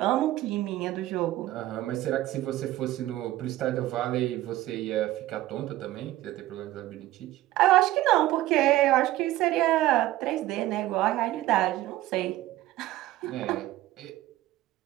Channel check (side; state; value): left; quieter; 15.6 dB